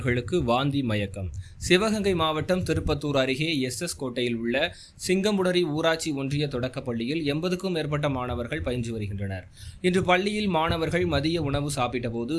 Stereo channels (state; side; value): identical; both; correlation 1.00